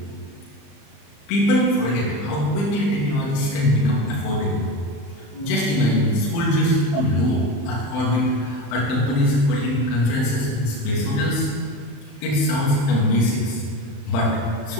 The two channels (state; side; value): late; right; 35 ms